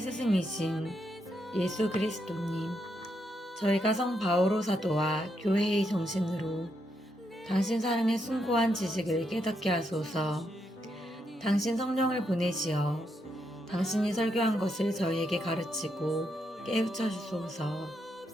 예수 그리스도님, 저희가 성 바오로 사도와 교회의 정신으로 당신 사랑의 숭고한 지식을 깨닫게 하소서. 당신 성령을 보내시어 당신이 설교한 것을 저희에게 가르치고 깨우쳐 주소서.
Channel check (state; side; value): normal; both; correlation 0.80